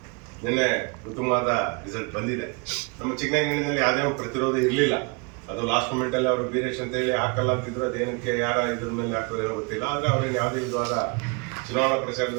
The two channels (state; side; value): quieter; left; 31.8 dB